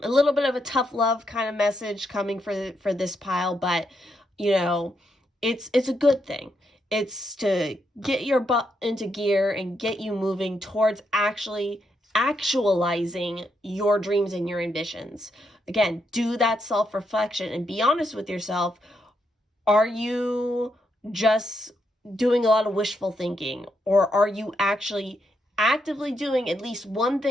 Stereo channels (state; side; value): normal; both; correlation 0.80